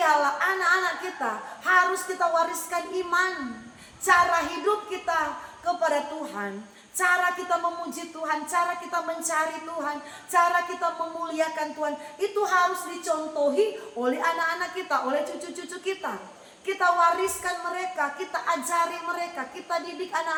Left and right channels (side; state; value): both; identical; correlation 1.00